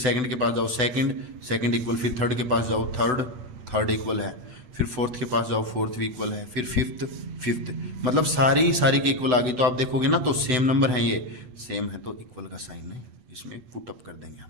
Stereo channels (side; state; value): left; late; 7.9 ms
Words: के पास जाओ सेकंड इक्वल, फिर थर्ड के पास जाओ थर्ड इक्वल है, फिर फोर्थ के पास जाओ फोर्थ भी इक्वल है, फिर फिफ्थ मतलब सारी के इक्वल आ गई। तो आप देखोगे ना तो सेम नंबर है, ये सेम है तो इक्वल का साइन है, इसमें पुट अप कर देंगे